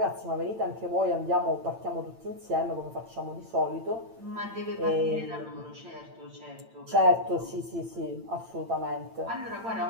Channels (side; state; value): left; late; 8.9 ms